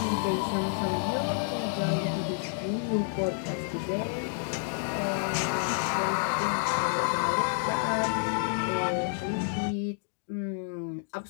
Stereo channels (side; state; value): right; silent; digital silence